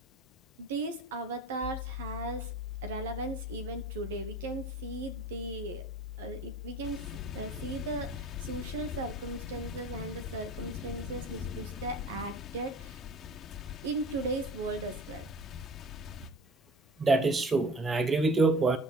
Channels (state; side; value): normal; both; correlation 0.41